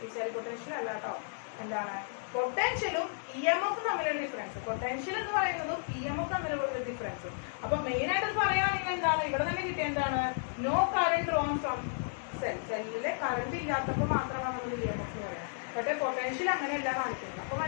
ഈ സെൽ പൊട്ടൻഷ്യൽ അല്ല കേട്ടോ, എന്താണ് പൊട്ടൻഷ്യലും EMF തമ്മിലുള്ള ഡിഫറൻസ്. പൊട്ടൻഷ്യൽ എന്ന് പറയുന്നതും EMF തമ്മിലുള്ള ഡിഫറൻസ്. അപ്പൊ മെയിൻ ആയിട്ട് പറയുകയാണെങ്കിൽ എന്താണ് ഇവിടെ തന്നെ കിട്ടിയ എന്താണ്, no current drawn from cell. സെല്ലിലെ കറണ്ട് ഇല്ലാത്തപ്പോൾ മാത്രമാണ് നമ്മൾ EMF എന്ന് പറയുന്നത്. പക്ഷേ പൊട്ടൻഷ്യൽ അങ്ങനെയല്ല കാണിക്കുന്നത്. അപ്പൊ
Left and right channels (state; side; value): silent; right; 56 dB below the other